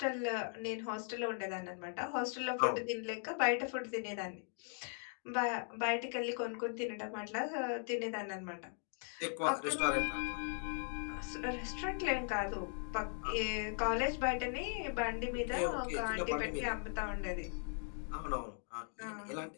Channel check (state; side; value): silent; right; 52 dB below the other